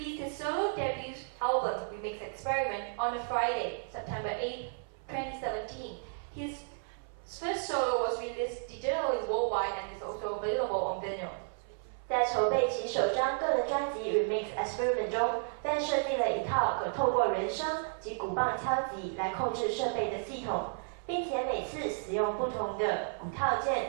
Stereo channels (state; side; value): silent; left; 56 dB below the other